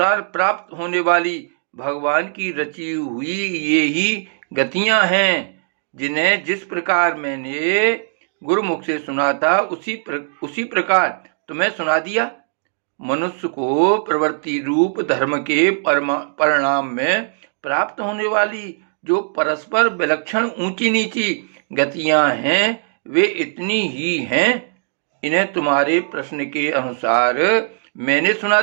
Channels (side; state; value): left; silent; digital silence